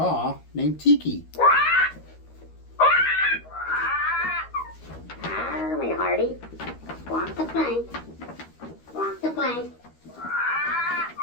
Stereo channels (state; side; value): late; right; 13 ms